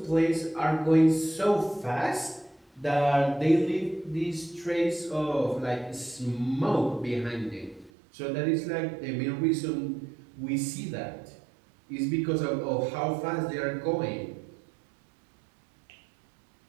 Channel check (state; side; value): drops out; left; at 7.9 s